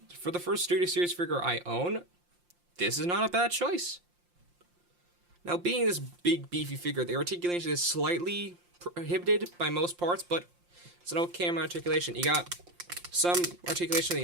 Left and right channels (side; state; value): left; late; 5.7 ms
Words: for the first Studio Series figure I own, this is not a bad choice. Now, being this big, beefy figure, the articulation is slightly prohibited by most parts, but it's an okay amount of articulation. You got some articulation in